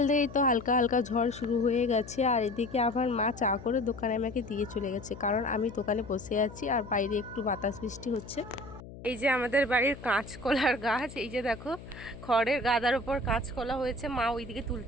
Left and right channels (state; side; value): noise; left; hum, 15 dB below the sound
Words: থেকেই তো হালকা হালকা ঝড় শুরু হয়ে গেছে, আর এদিকে আবার মা চা করে দোকানে আমাকে দিয়ে চলে গেছে, কারণ আমি দোকানে বসে আছি আর বাইরে একটু বাতাস বৃষ্টি হচ্ছে। এই যে আমাদের বাড়ির কাঁচকলার গাছ, এই যে দেখো খড়ের গাদার উপর কাঁচকলা হয়েছে, মা ওইদিকে